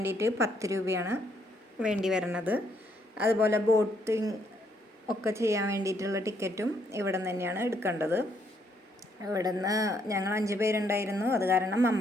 10 രൂപയാണ് വേണ്ടി വരുന്നത്. അതുപോലെ ബോട്ടിങ് ഒക്കെ ചെയ്യാൻ വേണ്ടിയിട്ടുള്ള ടിക്കറ്റും ഇവിടെ നിന്ന് തന്നെയാണ് എടുക്കേണ്ടത്. ഇവിടെ നിന്ന് ഞങ്ങൾ 5 പേരുണ്ടായിരുന്നു, അത് കാരണം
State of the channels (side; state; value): both; normal; correlation 0.71